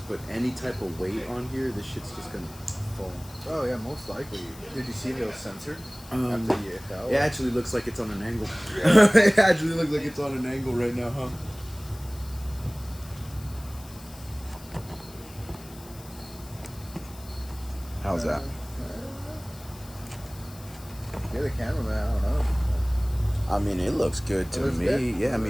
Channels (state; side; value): noise; left; hiss, 20 dB below the sound